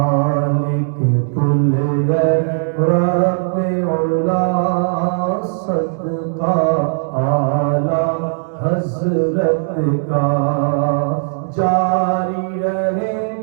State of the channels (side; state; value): left; silent; 63 dB below the other